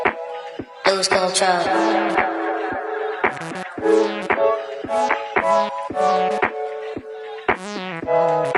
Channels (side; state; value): both; identical; correlation 1.00